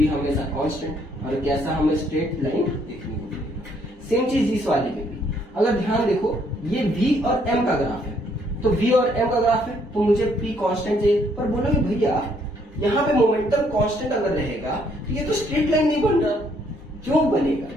हमेशा कांस्टेंट। और कैसा हमें स्ट्रेट लाइन देखने को मिलेगा। सेम चीज इस वाले में भी, अगर ध्यान देखो ये v और m का ग्राफ है, तो v और m का ग्राफ है तो मुझे p कांस्टेंट चाहिए। पर बोलोगे भैया यहाँ पे मोमेंटम कांस्टेंट अगर रहेगा तो ये तो स्ट्रेट लाइन नहीं बन रहा, क्यों बनेगा,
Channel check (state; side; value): normal; both; correlation 0.68